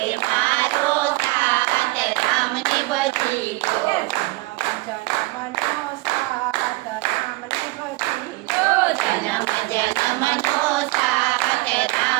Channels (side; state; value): left; quieter; 22.4 dB